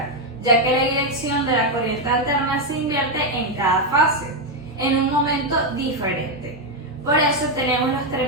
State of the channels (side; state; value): both; normal; correlation 0.04